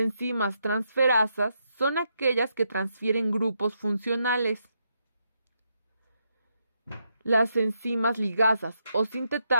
transferasas son aquellas que transfieren grupos funcionales. Las enzimas ligasas o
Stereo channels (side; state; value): both; inverted; correlation -0.81